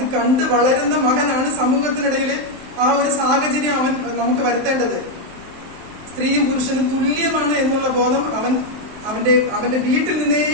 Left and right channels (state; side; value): late; left; 23 ms